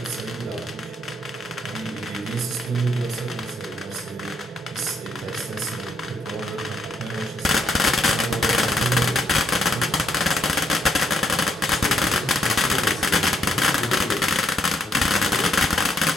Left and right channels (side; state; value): both; normal; correlation 0.75